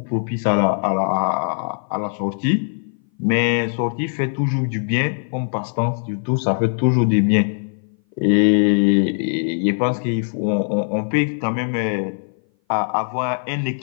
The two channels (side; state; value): right; silent; 58 dB below the other